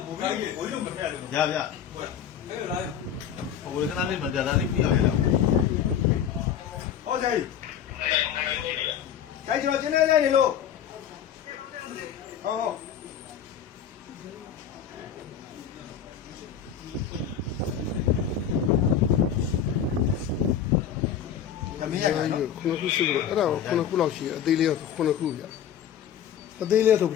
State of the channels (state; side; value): quieter; right; 8.8 dB